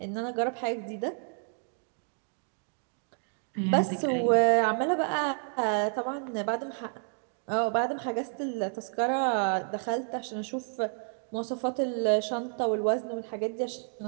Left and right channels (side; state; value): left; silent; 55 dB below the other